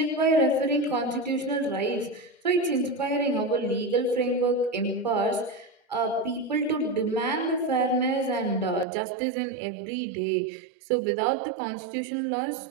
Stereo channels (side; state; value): left; drops out; at 8.8 s